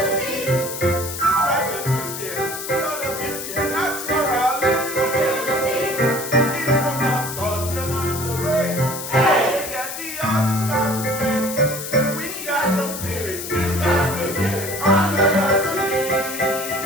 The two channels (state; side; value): noise; left; hiss, 7 dB below the sound